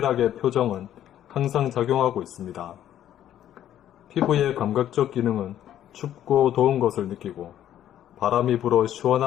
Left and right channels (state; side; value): quieter; right; 11.4 dB